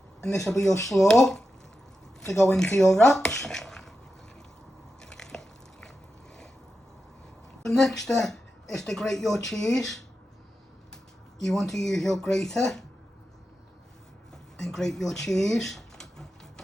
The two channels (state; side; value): normal; both; correlation 0.90